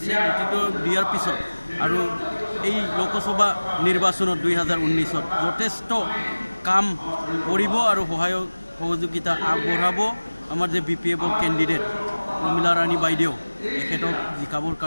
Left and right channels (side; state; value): both; inverted; correlation -1.00